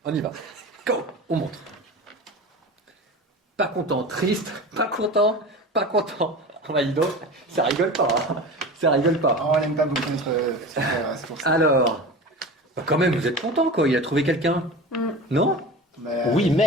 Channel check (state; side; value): normal; both; correlation 0.32